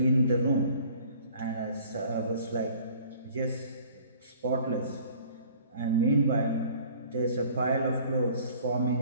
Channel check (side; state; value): both; inverted; correlation -0.52